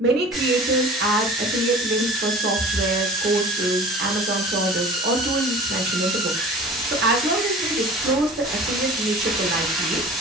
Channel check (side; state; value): both; normal; correlation 0.41